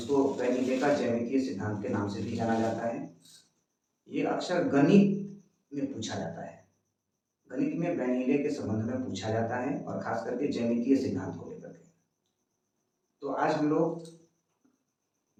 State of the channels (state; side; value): identical; both; correlation 1.00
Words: वैन हीले का ज्यामितीय सिद्धांत के नाम से भी जाना जाता है। ये अक्सर गणित में पूछा जाता है। गणित में वैन हीले के संबंध में पूछा जाता है और खास करके ज्यामितीय सिद्धांत को लेकर के। तो आज हम लोग